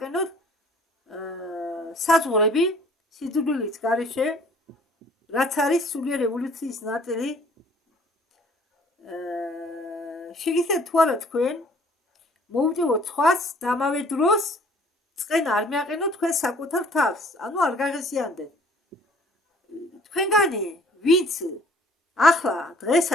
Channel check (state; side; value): normal; both; correlation 0.55